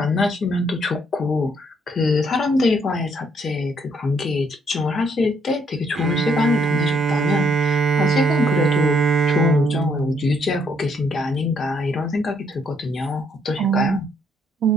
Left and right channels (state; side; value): normal; both; correlation 0.70